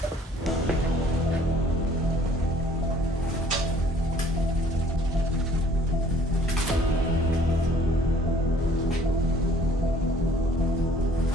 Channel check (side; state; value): both; normal; correlation 0.56